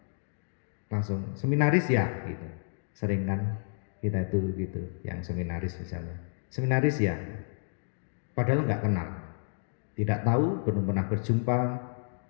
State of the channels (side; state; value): right; silent; digital silence